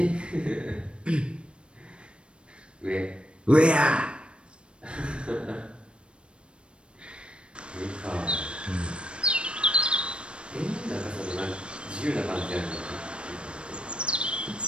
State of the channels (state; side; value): late; left; 0.057 ms